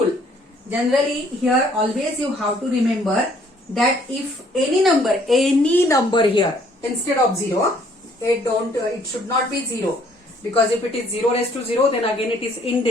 generally here always you have to remember that if any number here instead of 0, it should not be 0, because if it is 0 raised to 0 then again it is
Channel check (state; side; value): normal; both; correlation 0.62